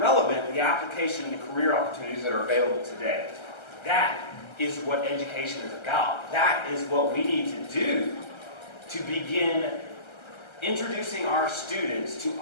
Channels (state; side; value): late; right; 1.3 ms